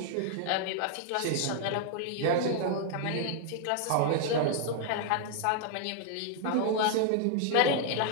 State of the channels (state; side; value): different; both; correlation 0.00